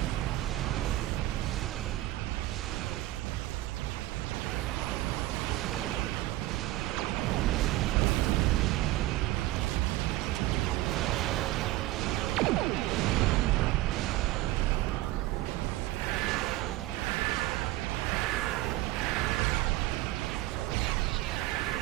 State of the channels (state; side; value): quieter; left; 17.0 dB